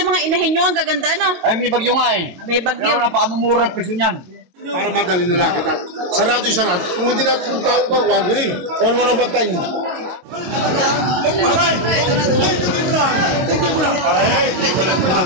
yung mga inahin nyo, ang gaganda, no? Ay, may bagyo nga eh. May bagyo. Kaya napakamumura ang presyo niyan. Para madali na lang kita. Sarado yung sarado. Kung hindi natin tao ba, one ring. One mo na ba tayo?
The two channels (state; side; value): late; left; 22 ms